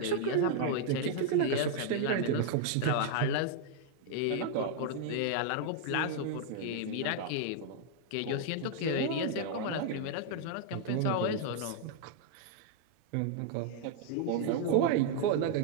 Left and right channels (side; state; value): both; different; correlation -0.01